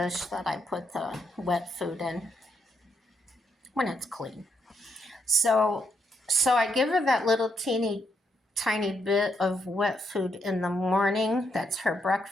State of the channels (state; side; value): normal; both; correlation 0.77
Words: that I put the wet food in when it's clean. So I give her that little teeny tiny bit of wet food in the morning. That's her